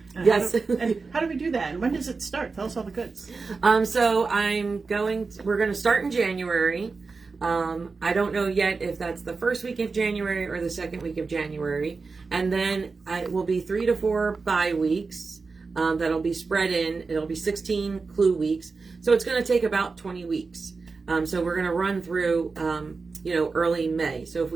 And Yes. And how do we do that? And when does it start? Tell us all the goods. So we're going to start in January. I don't know yet if that's the first week of January or the second week of January. And then it will be 3 to 4 bye weeks that'll be spread in. It'll be 16 clue weeks. So it's going to take about 20 weeks. So we're going to run through, early May. So if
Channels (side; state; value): left; quieter; 4.4 dB